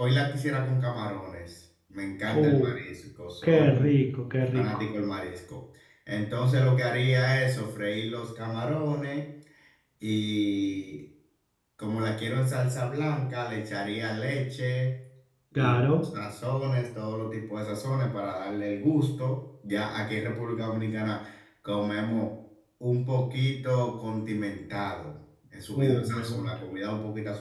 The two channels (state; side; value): identical; both; correlation 1.00